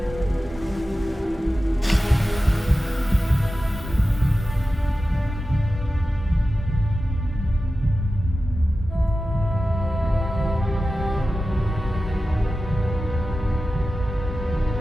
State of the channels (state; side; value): normal; both; correlation 0.93